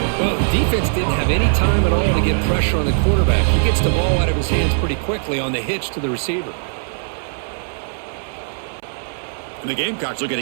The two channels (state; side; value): silent; left; 66 dB below the other